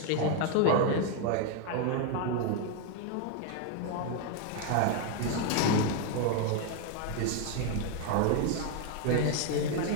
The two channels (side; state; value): both; different; correlation 0.01